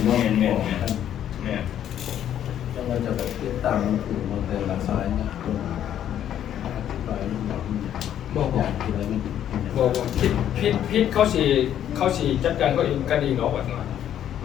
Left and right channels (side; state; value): right; quieter; 10.5 dB